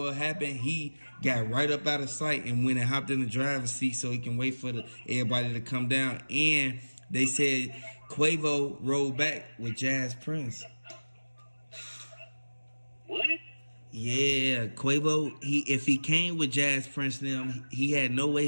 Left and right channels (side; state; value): both; inverted; correlation -1.00